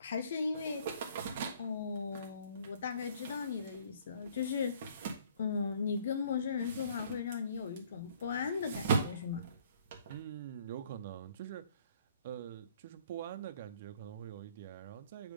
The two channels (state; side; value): inverted; both; correlation -0.58